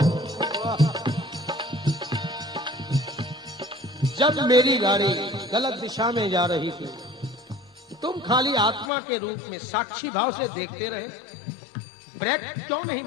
जब मेरी गाड़ी गलत दिशा में जा रही थी, तुम खाली आत्मा के रूप में साक्षी भाव से देखते रहे। ब्रेक क्यों नहीं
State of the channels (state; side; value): drops out; right; at 8.9 s